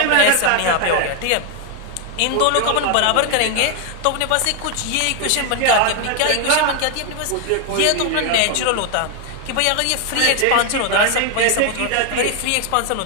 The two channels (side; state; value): both; different; correlation 0.00